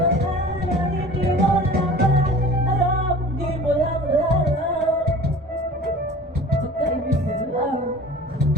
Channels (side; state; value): both; normal; correlation 0.42